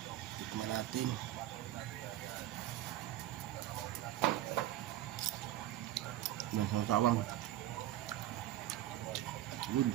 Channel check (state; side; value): quieter; left; 13.6 dB